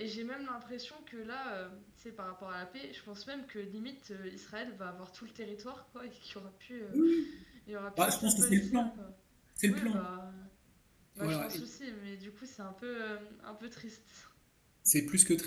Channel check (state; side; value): identical; both; correlation 1.00